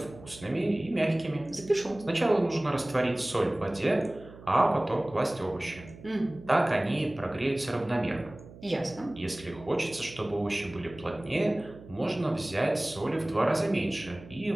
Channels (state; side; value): noise; right; hum, 18 dB below the sound